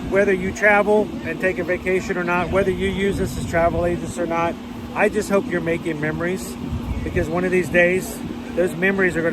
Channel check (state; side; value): identical; both; correlation 1.00